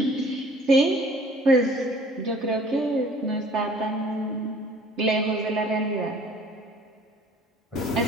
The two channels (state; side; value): normal; both; correlation 0.52